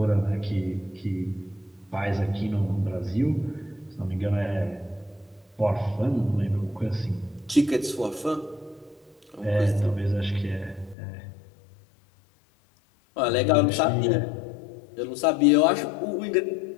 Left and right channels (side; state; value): right; drops out; at 11.0 s